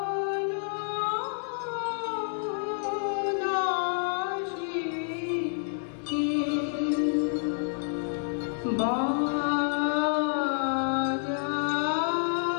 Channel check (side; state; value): right; silent; digital silence